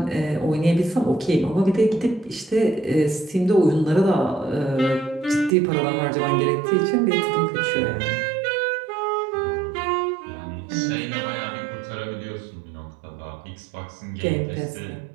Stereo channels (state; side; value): drops out; left; at 5.6 s